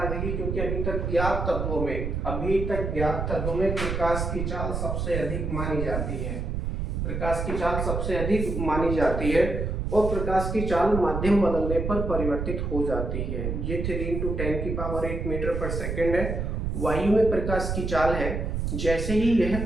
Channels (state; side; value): noise; right; rumble, 2 dB below the sound